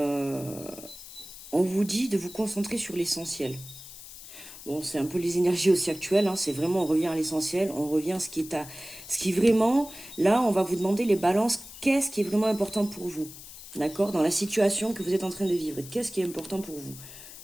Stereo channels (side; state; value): left; noise; hiss, 15 dB below the sound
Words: vous dit de vous concentrer sur l'essentiel. Bon, c'est un peu les énergies aussi actuelles, hein, c'est vraiment, on revient à l'essentiel, on revient à ce qui vraiment, là, on va vous demander les balances, qu'est-ce qui est vraiment important pour vous, d'accord, dans la situation que vous êtes en train de vivre, qu'est-ce qui est important pour vous?